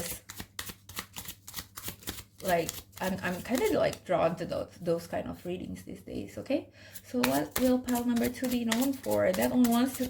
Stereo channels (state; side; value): identical; both; correlation 1.00